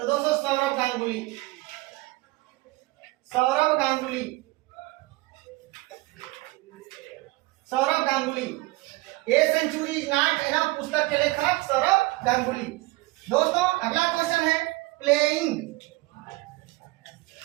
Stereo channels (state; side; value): quieter; left; 21.6 dB